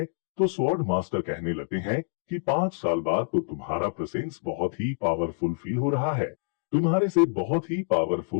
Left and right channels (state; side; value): silent; right; digital silence